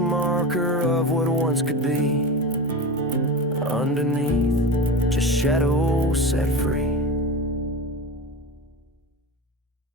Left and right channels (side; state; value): both; normal; correlation 0.27